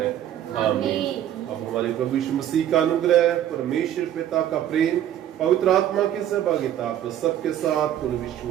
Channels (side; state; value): left; quieter; 11.3 dB